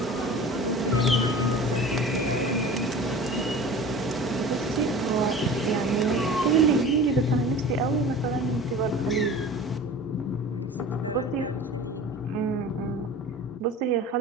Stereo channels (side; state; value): both; normal; correlation 0.38